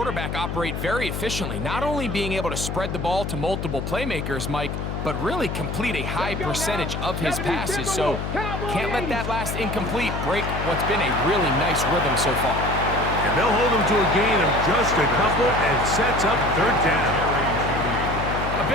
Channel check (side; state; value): left; noise; hum, 4 dB below the sound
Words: operate very efficiently, not only being able to spread the ball to multiple playmakers, Mike, but really complete a high percentage of his passes. So can't let that last incomplete break what's been a really nice rhythm so far. And they'll hold him to a gain of just a couple and sets up third down. A